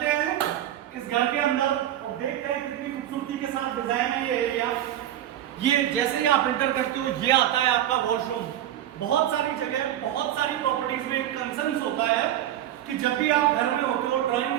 हैं इस घर के अंदर और देखते हैं कितनी खूबसूरती के साथ डिजाइन है ये एरिया। ये जैसे ही आप एंटर करते हो ये आता है आपका वॉशरूम। बहुत सारी जगह, बहुत सारी प्रॉपर्टीज में एक कंसर्न होता है कि जब भी आप घर में होते हो,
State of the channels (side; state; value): left; quieter; 12.0 dB